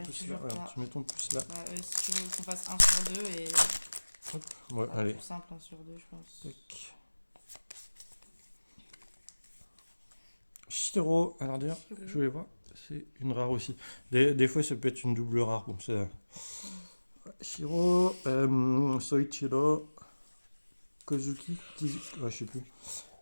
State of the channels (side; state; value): both; inverted; correlation -1.00